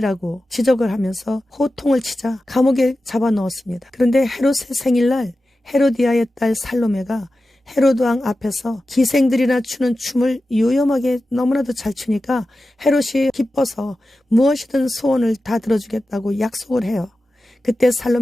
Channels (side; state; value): both; normal; correlation 0.93